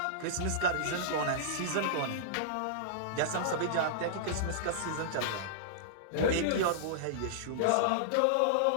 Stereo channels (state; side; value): different; both; correlation -0.02